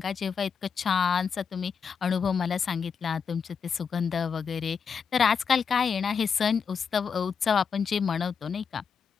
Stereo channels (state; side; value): quieter; right; 6.3 dB